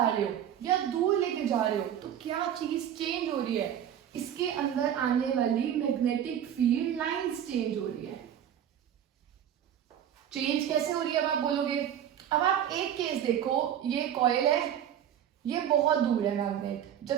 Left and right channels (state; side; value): quieter; left; 10.0 dB